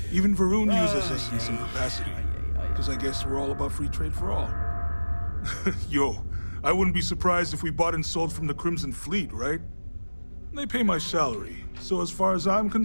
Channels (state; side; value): inverted; both; correlation -1.00